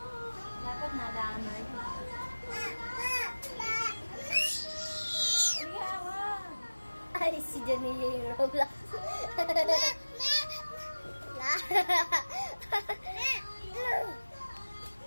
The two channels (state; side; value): inverted; both; correlation -1.00